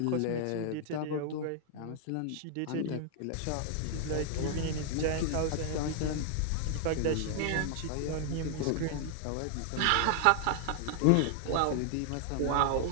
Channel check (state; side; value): different; both; correlation 0.00